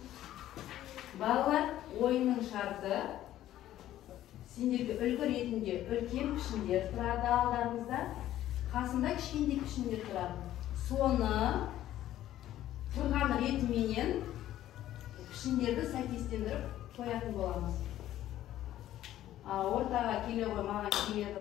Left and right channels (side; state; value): right; quieter; 13.1 dB